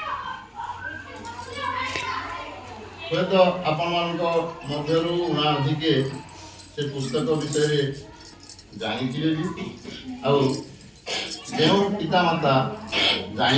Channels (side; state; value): both; identical; correlation 1.00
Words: ହୁଏତ ଆପଣମାନଙ୍କ ମଧ୍ୟରୁ ଉଣା ଅଧିକେ ସେ ପୁସ୍ତକ ବିଷୟରେ ଜାଣିଥିବେ ବି, ଆଉ ଯେଉଁ ପିତାମାତା